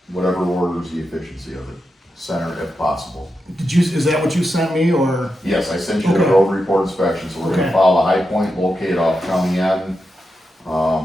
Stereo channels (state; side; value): normal; both; correlation 0.88